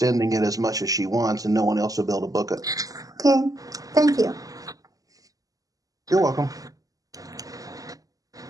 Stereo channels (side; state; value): left; late; 0.17 ms